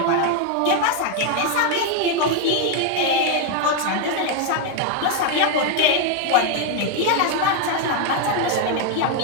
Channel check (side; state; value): both; different; correlation 0.01